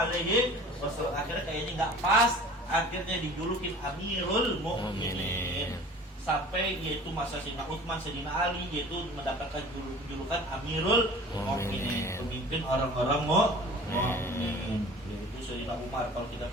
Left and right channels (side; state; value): both; normal; correlation 0.44